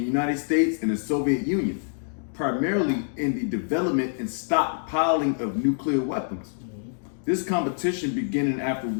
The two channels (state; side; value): silent; right; digital silence